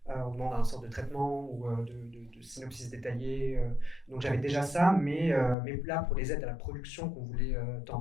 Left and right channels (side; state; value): right; drops out; at 5.6 s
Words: On demande un sorte de traitement ou de synopsis détaillé. Donc j'avais déjà ça, mais là pour les aides à la production qu'on voulait